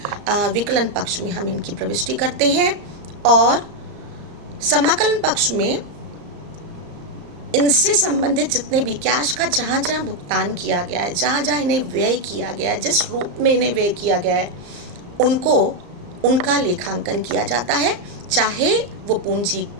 विकलन पक्ष में हम इनकी प्रविष्टि करते हैं। और समाकलन पक्ष में इनसे संबंधित जितने भी कैश का जहाँ जहाँ भुगतान किया गया है, जहाँ जहाँ इन्हें व्यय किया गया है, जिस रूप में इन्हें व्यय किया गया है, उनका लेखांकन किया जाता है, चाहे वो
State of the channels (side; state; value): left; late; 34 ms